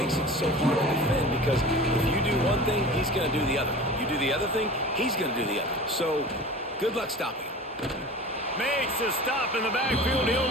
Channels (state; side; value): normal; both; correlation 0.37